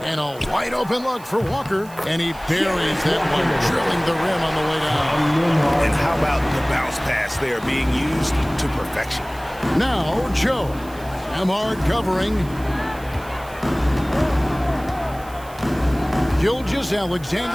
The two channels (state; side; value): noise; right; hiss, 21 dB below the sound